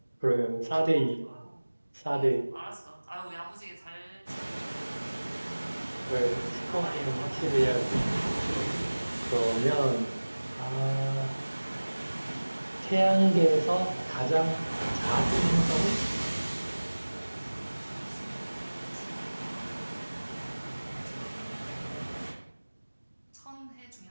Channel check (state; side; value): inverted; both; correlation -1.00